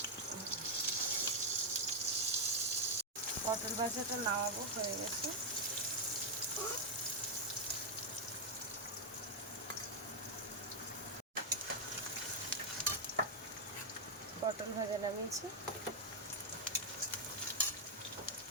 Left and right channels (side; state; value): both; normal; correlation -0.01